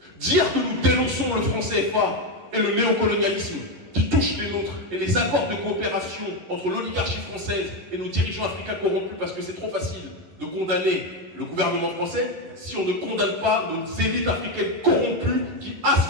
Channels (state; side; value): late; left; 11 ms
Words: Dire que nous dénonçons le franc CFA et le néocolonialisme qui touche les nôtres et les accords de coopération entre l'oligarchie française et nos dirigeants africains corrompus, parce que c'est trop facile de condamner le gouvernement français si on ne condamne pas nos élites africaines corrompues qui